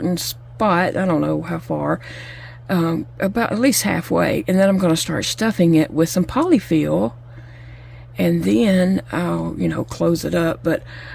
spot. I don't know how far, about at least halfway, and then I'm gonna start stuffing it with some polyfill, and then I'll, close it up. But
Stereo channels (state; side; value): identical; both; correlation 1.00